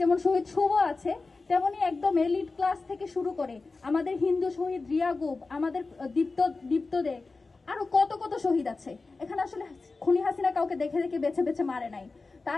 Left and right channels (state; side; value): quieter; right; 3.8 dB